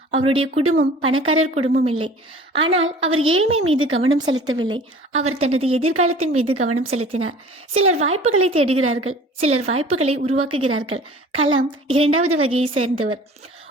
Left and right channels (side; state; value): both; normal; correlation 0.46